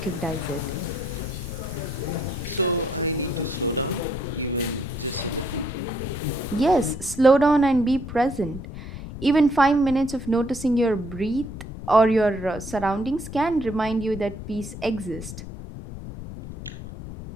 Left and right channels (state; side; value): noise; left; rumble, 11 dB below the sound